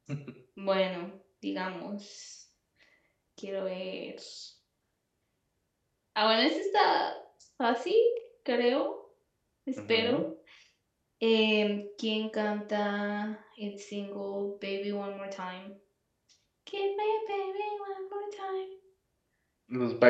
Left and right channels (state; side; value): identical; both; correlation 1.00